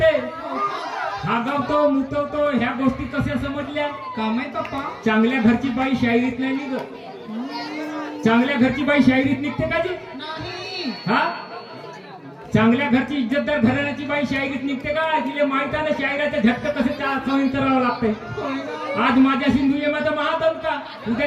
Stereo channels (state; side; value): identical; both; correlation 1.00